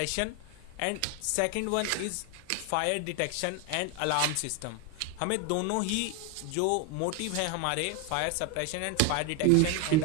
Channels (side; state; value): both; different; correlation 0.01